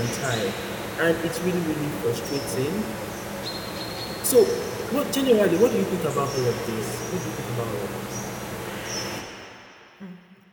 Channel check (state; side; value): identical; both; correlation 1.00